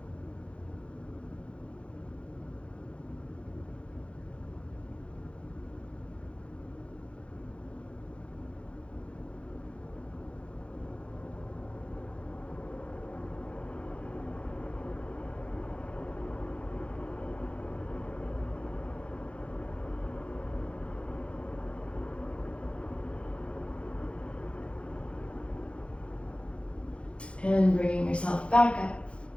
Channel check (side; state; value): right; late; 0.060 ms